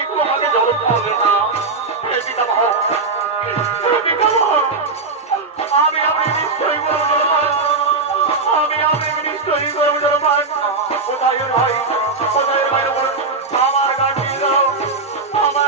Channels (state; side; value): quieter; left; 3.9 dB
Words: একটু আমাকে জল খাওয়াবে না? পিতামহ, পিতামহ, আমি নিশ্চয়ই করবো জলপান, আমি নিশ্চয়ই করবো জলপান। কোথায় ভাই, কোথায় ভাই, আমার গান দিয়ে দাও,